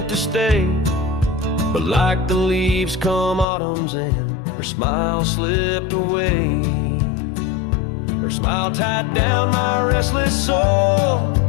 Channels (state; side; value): drops out; right; at 3.5 s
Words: to stay. But like the leaves come autumn's end, her smile slipped away. Her smile tied down my restless soul